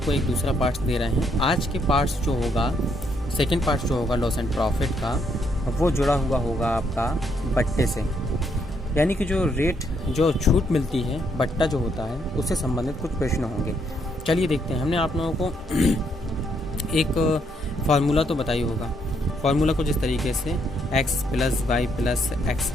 एक दूसरा पार्ट दे रहे हैं। आज के पार्ट्स जो होगा, सेकेंड पार्ट जो होगा लॉस एंड प्रॉफिट का, वो जुड़ा हुआ होगा आपका बट्टे से, यानी कि जो रेट जो छूट मिलती है बट्टा जो होता है उससे संबंधित कुछ प्रश्न होंगे। चलिए देखते हैं। हमने आप लोगों को एक फार्मूला तो बताई होगा। फार्मूला कुछ इस तरीके से x plus y plus x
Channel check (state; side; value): normal; both; correlation 0.73